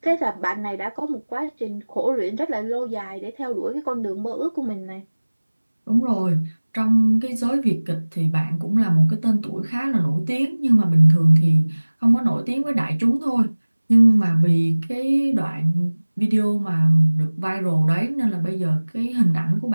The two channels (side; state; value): both; inverted; correlation -1.00